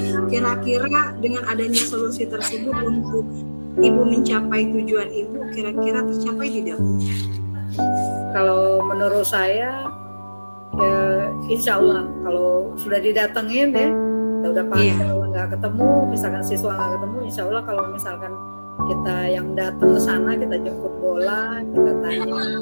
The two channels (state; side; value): inverted; both; correlation -1.00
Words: Kira-kira dengan adanya solusi tersebut untuk Ibu mencapai tujuan Ibu, kira-kira tercapai tidak, Bu? Kalau menurut saya ya insya Allah kalau sudah didatengin ya, kita udah panggil nggak ketemu, misalkan siswa nggak ketemu, insya Allah kalau misalkan kita yang datang ke sana, kita jemput bola, kita tanya